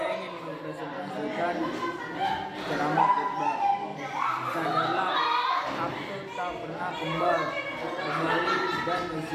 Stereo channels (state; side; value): identical; both; correlation 1.00